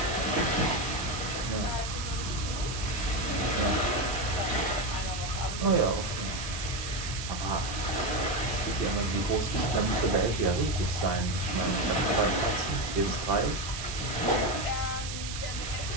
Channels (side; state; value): right; noise; hiss, 8 dB below the sound